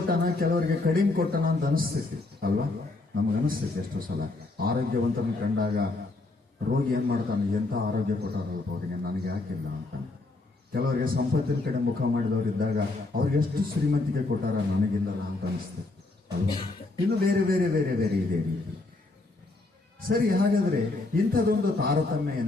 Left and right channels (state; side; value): quieter; right; 3.2 dB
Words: ಕೆಲವರಿಗೆ ಕಡಿಮೆ ಕೊಟ್ಟನ ಅಂತ ಅನಿಸ್ತೈತಿ ಅಲ್ವಾ? ನಮಗನಿಸ್ತೈತಿ ಎಷ್ಟೋ ಸಲ. ಆರೋಗ್ಯವಂತನ ಕಂಡಾಗ ರೋಗಿ ಏನ್ ಮಾಡ್ತಾನೆ, ಎಂಥ ಆರೋಗ್ಯ ಕೊಟ್ಟಾರಲ್ಪ ಅವರಿಗೆ, ನನಗೆ ಯಾಕಿಲ್ಲ ಅಂತ. ಕೆಲವರಿಗೆ ಸಂಪತ್ತಿನ ಕಡೆ ಮುಖ ಮಾಡಿದವರು ಇದ್ದಾಗ ಅವ್ರಿಗೆ ಎಷ್ಟು ಶ್ರೀಮಂತಿಕೆ ಕೊಟ್ಟಾರ, ನನಗಿಲ್ಲಲ್ಲ ಅಂತ ಅನಿಸ್ತದೆ ಅಲ್ವಾ? ಇನ್ನು ಬೇರೆ ಬೇರೆ ಬೇರೆ ಬೇರೆ ಇದೆ ರೀತಿ. ಸರಿ, ಹಾಗಾದ್ರೆ ಇಂಥದೊಂದು ತಾರತಮ್ಯ